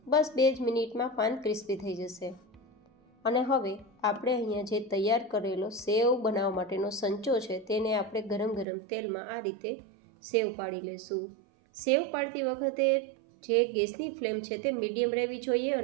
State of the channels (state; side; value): drops out; left; at 8.7 s